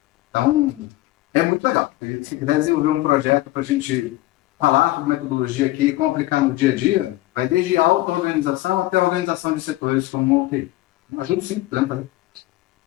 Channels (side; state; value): right; quieter; 17.5 dB